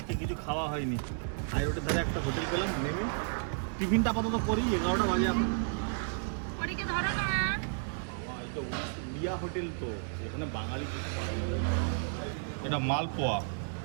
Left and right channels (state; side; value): silent; left; digital silence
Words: কিছু খাওয়া হয়নি। হাই রোডের ধারে একটা হোটেল পেলাম, নেমে টিফিনটা আপাতত করি। 11টা বাজে এখন। পরীকে ধরো না। এই তো উড়িয়া হোটেল, তো এখানে বাঙালি কিছু পাওয়া যাবে। এটা মালপোয়া